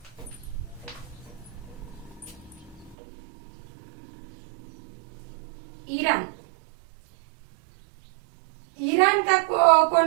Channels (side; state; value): left; drops out; at 3.0 s